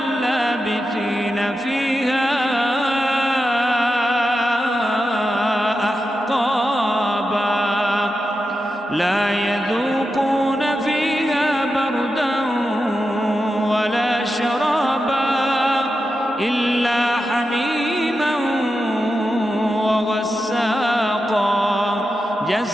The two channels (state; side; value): normal; both; correlation 0.89